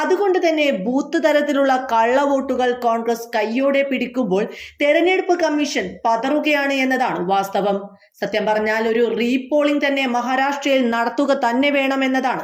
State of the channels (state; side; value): identical; both; correlation 1.00